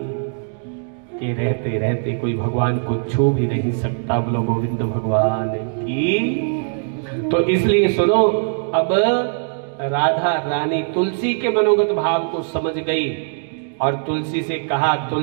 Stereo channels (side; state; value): left; silent; digital silence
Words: के रहते रहते कोई भगवान को छू भी नहीं सकता। बोलो गोविंद भगवान की। तो इसलिए सुनो, अब राधा रानी तुलसी के मनोगत भाव को समझ गई और तुलसी से कहा,